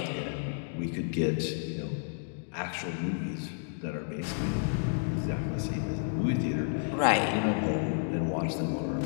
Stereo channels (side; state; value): right; silent; digital silence